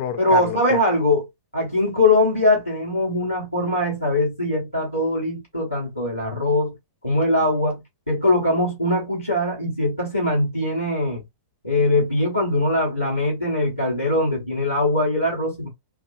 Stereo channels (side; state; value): both; inverted; correlation -0.46